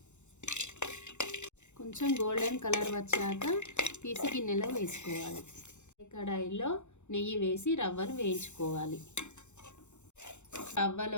కొంచెం గోల్డెన్ కలర్ వచ్చాక తీసి గిన్నెలో వేసుకోవాలి. కడాయిలో నెయ్యి వేసి రవ్వను వేయించుకోవాలి.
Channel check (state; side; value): late; right; 0.83 ms